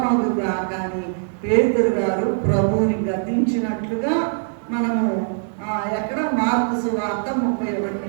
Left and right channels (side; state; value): left; silent; 64 dB below the other